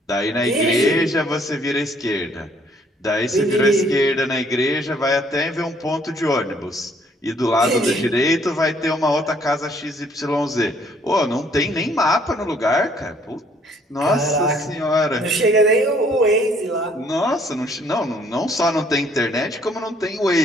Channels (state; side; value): normal; both; correlation 0.63